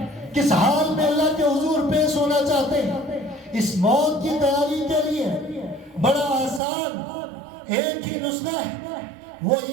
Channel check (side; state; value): left; drops out; at 6.6 s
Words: کس حال میں اللہ کے حضور پیش ہونا چاہتے ہیں؟ اس موت کی تیاری کے لیے بڑا آسان ایک ہی نسخہ ہے، وہ